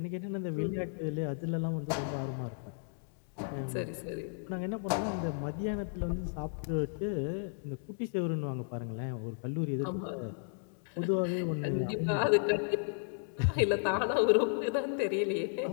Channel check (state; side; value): silent; right; digital silence